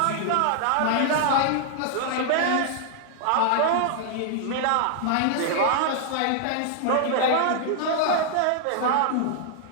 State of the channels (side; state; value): both; different; correlation -0.01